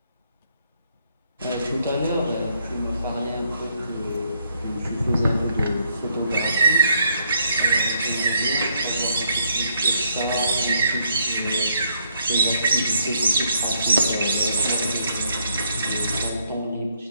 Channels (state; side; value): inverted; both; correlation -0.72